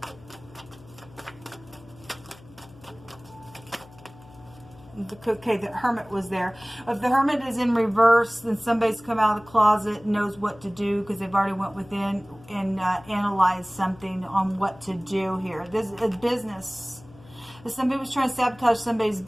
Okay, the Hermit was there. If the Hermit is in reverse, then somebody's come out of the closet and knows what to do because they've already went within and analyzed something on what to do here. This is a business. If somebody was trying to sabotage somebody's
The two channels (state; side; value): noise; left; hum, 22 dB below the sound